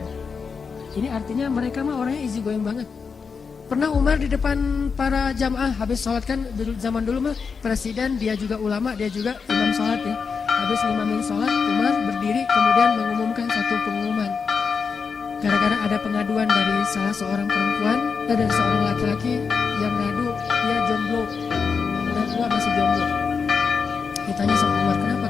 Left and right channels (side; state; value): right; quieter; 5.5 dB